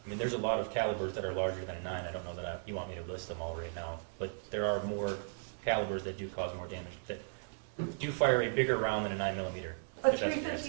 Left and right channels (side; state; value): left; silent; digital silence